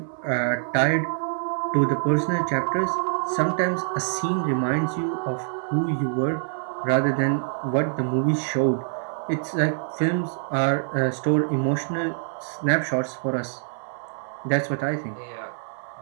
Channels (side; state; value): left; silent; 60 dB below the other